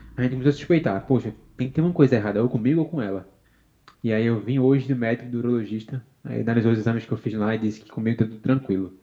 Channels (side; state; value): both; identical; correlation 1.00